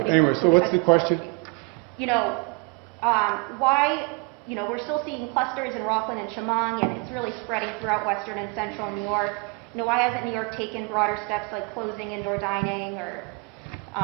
including anyway, so what's the question? Why, we're still seeing clusters in Rockland and Chemung, and it's really spreading throughout western and central New York. Why hasn't New York taken broader steps like closing indoor dining or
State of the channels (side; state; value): left; quieter; 31.4 dB